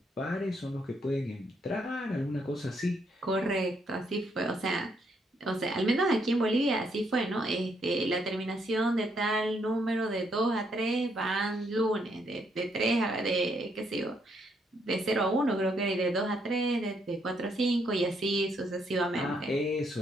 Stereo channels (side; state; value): both; normal; correlation 0.74